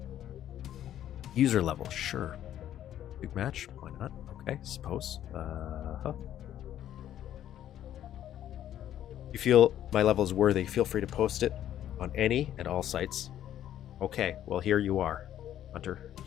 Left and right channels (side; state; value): right; quieter; 11.4 dB